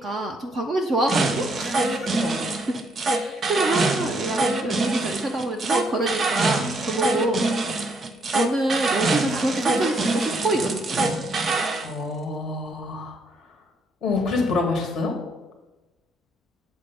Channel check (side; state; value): both; normal; correlation 0.71